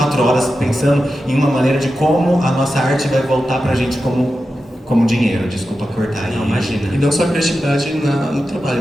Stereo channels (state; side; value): normal; both; correlation 0.91